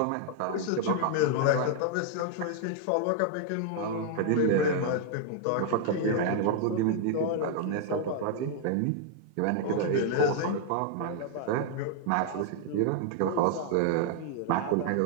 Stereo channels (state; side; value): different; both; correlation 0.00